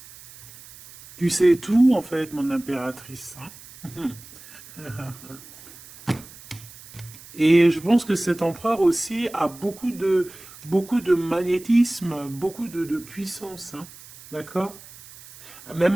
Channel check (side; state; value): right; noise; hiss, 19 dB below the sound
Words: Tu sais tout, en fait, mon impératrice, hein. Et je pense que cet empereur aussi a beaucoup de magnétisme, beaucoup de puissance, hein. D'accord? Même